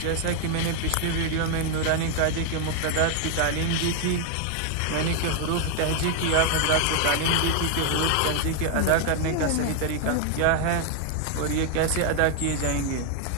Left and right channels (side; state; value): both; different; correlation 0.00